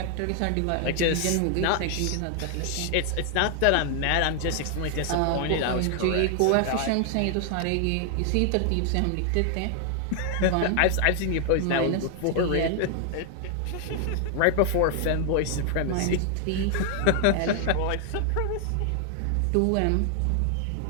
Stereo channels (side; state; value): both; different; correlation 0.00